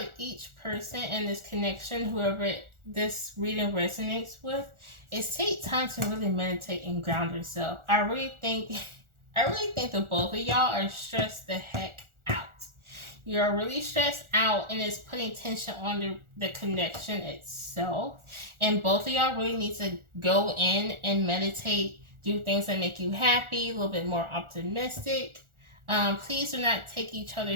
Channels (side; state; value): left; late; 1.4 ms